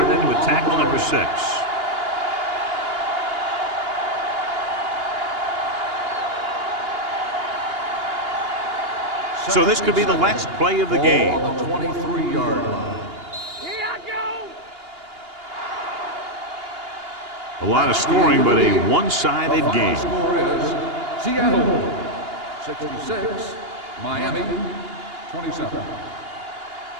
with tackle number 6. So this could be the last play of the game. On the 23-yard line. Here I go. A lot of scoring, but a one-sided The game. score is Seattle 66, Miami 27.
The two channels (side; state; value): left; late; 2.8 ms